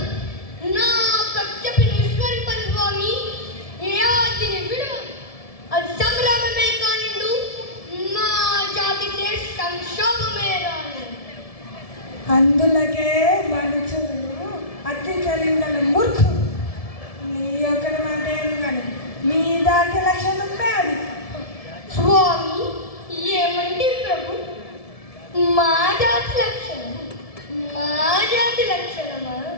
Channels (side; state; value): right; late; 1.7 ms